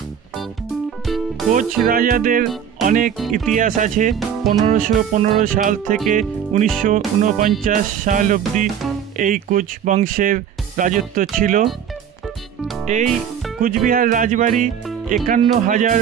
কোচ রাজাদের অনেক ইতিহাস আছে। 1515 সাল থেকে 1949 সাল অবধি এই কোচ বংশের রাজত্ব ছিল। এই কুচবিহার রাজবাড়ি 51,000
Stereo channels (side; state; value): left; quieter; 8.5 dB